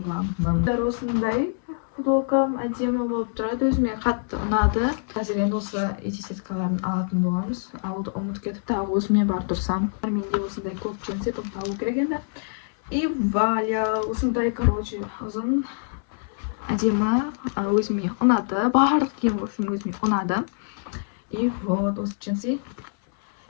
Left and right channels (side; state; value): right; silent; 62 dB below the other